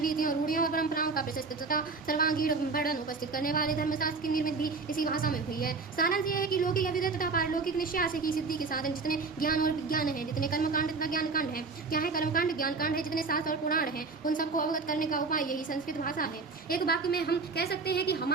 रीतियों, रूढ़ियों और परंपराओं का प्रशस्त तथा सर्वांगीण वर्णन उपस्थित करने वाले धर्मशास्त्र की निर्मित भी इसी भाषा में हुई है। सारांश यह है कि लौकिक अभ्युदय तथा पारलौकिक निश्चय की सिद्धि के साधन जितने ज्ञान और विज्ञान है, जितने कर्मकांड तथा ज्ञानकांड है, क्या है कर्मकांड ज्ञानकांड है, जितने शास्त्र और पुराण है, उन सबको अवगत करने का उपाय यही संस्कृत भाषा है। एक वाक्य में हम कह सकते हैं कि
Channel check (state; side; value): quieter; left; 4.3 dB